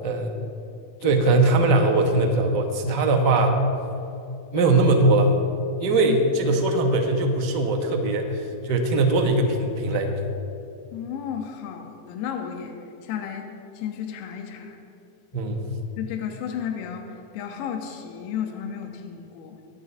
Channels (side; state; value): right; late; 18 ms